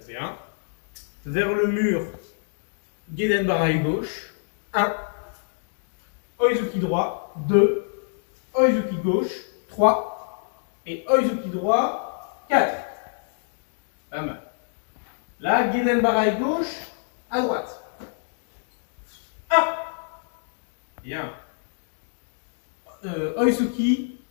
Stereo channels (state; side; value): silent; right; digital silence